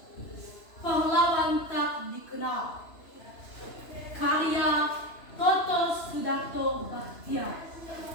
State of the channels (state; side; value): late; right; 2.9 ms